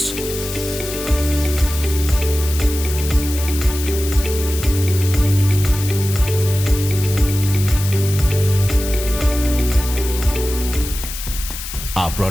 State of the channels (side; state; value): left; noise; hiss, 9 dB below the sound